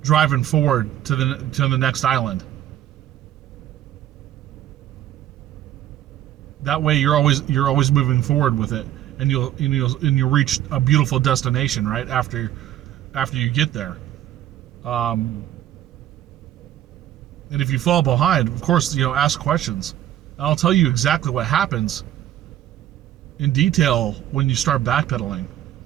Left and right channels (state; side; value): quieter; left; 12.2 dB